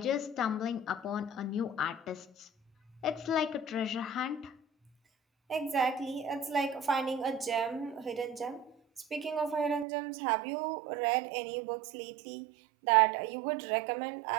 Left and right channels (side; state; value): left; drops out; at 9.9 s